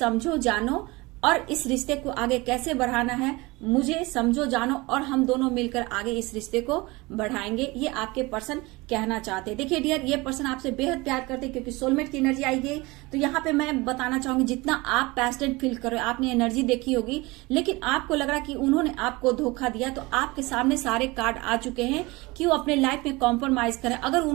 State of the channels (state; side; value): quieter; left; 23.1 dB